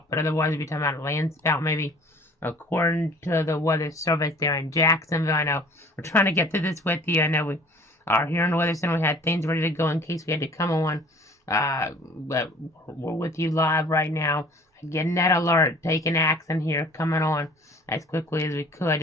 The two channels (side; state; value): both; normal; correlation 0.50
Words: but otherwise, we'll be talking about a land spout maybe. According to the weather service there in Jacksonville, I know we're trying to get through this with you. I know we are here in the Weather Center. We had things ready to go in case we had to come on. But we're with you live right now. Getting that alert, taking action here, coming on as quickly as we could